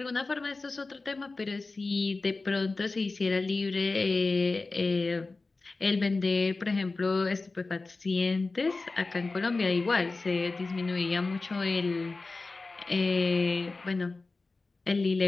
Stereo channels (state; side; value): quieter; right; 3.6 dB